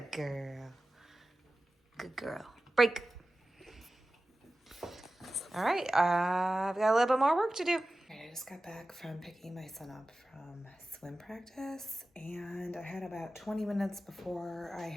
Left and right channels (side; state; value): both; normal; correlation 0.95